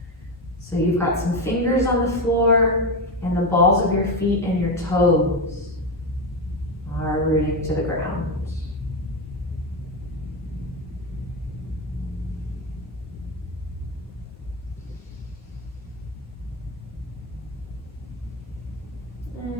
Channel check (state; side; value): normal; both; correlation 0.14